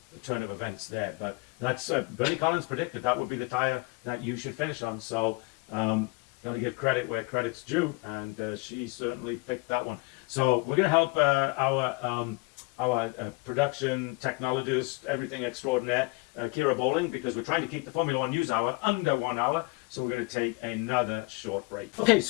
turn of events there. But that's Bernie Collins predicted that would be the tire that you should finish on. So got to give credit where credit's due, and she certainly picked that one. So we're going to help our production technologist, everything extraordinaire, Kira Bowling, because we're trying to keep the Formula One news hour under 1 hour. So we're going to take another short break. Okay,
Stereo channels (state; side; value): quieter; right; 26.5 dB